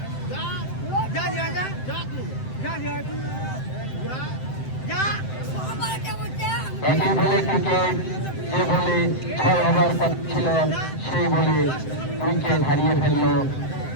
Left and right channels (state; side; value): late; right; 7.8 ms